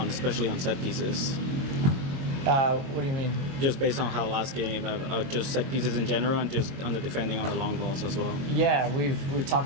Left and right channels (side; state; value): left; late; 22 ms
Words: especially on set pieces? What do you mean? Just based on how last game, just set pieces in general, and just on the defending on the long balls as well. Yeah, we've